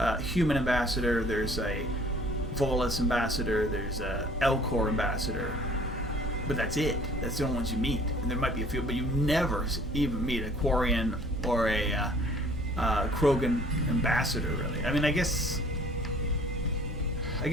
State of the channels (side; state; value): both; normal; correlation 0.54